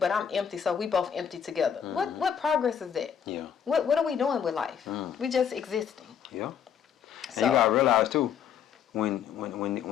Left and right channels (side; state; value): right; quieter; 8.1 dB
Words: I'm empty, so we both empty together. What progress is that? Yeah. What are we doing with life? We just existing. Yeah. And So, you gotta realize too, when